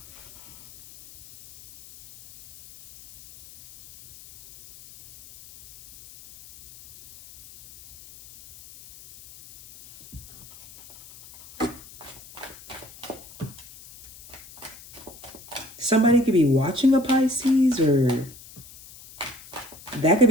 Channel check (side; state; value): left; noise; hiss, 20 dB below the sound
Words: Somebody could be watching a Pisces, or that could